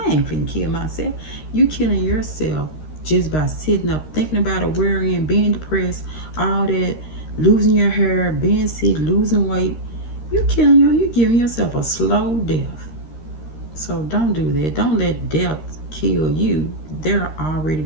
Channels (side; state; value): right; late; 13 ms